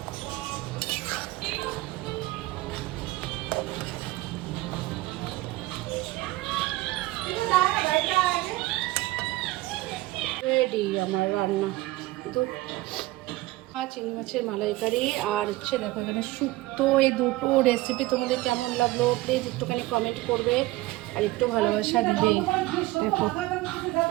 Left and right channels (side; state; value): left; quieter; 18.6 dB